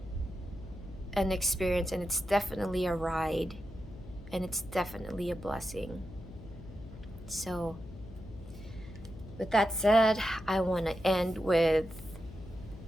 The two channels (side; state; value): left; noise; hum, 15 dB below the sound